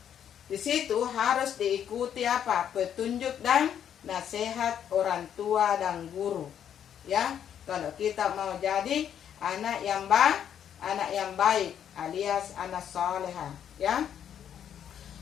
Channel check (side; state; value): right; quieter; 9.2 dB